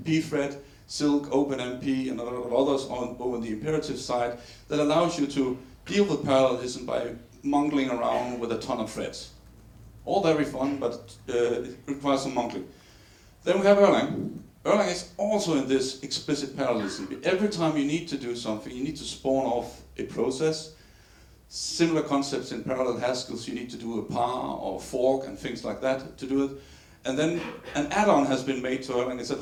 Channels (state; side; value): identical; both; correlation 1.00